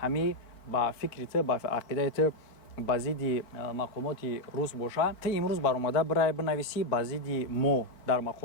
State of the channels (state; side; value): late; right; 4.4 ms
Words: ҳамин ба фикри ту ба ақидаи ту ба зидди мақомоти рус боша ту имрӯз баромада бирай бинависӣ ба зидди мо дар